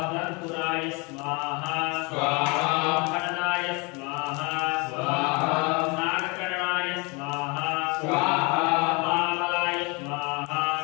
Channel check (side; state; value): right; quieter; 28.9 dB